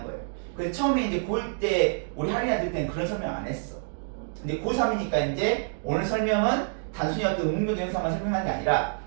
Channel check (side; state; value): left; silent; digital silence